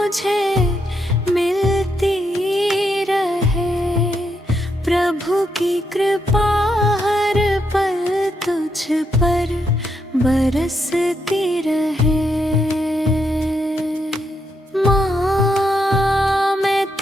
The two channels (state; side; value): normal; both; correlation 0.80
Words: मिलती रहे, प्रभु की कृपा हर पल तुझ पर बरसती रहे। माँ मैं